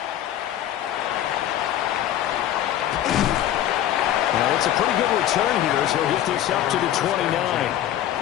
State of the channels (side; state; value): right; quieter; 11.9 dB